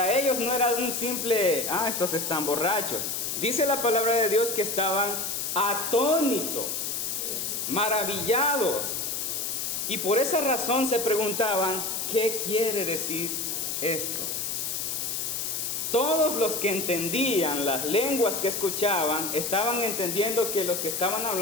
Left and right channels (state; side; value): noise; left; hiss, 2 dB below the sound